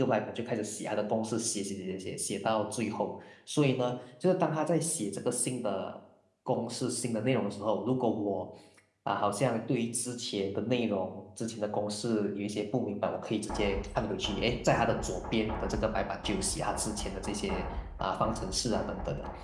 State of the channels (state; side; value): identical; both; correlation 1.00